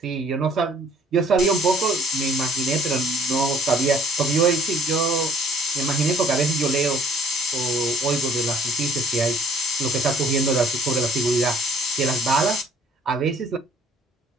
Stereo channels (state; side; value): normal; both; correlation 0.57